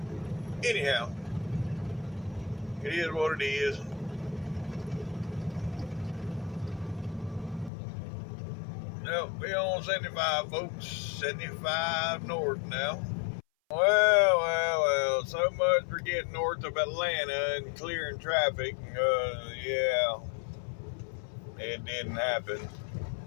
Anyhow, it is what it is. Nope, we're on 75, folks. 75 north now. Well. So much for getting north of Atlanta and clearing traffic. Yeah, it didn't happen.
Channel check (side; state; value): right; drops out; at 7.7 s